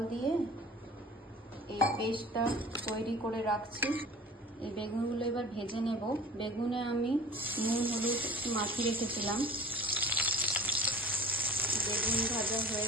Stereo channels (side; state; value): both; normal; correlation 0.43